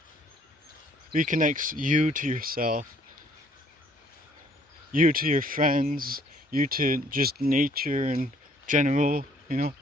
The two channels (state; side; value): normal; both; correlation 0.62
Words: Reconnects you to yourself, you to your friends, you to just nature in general, you know.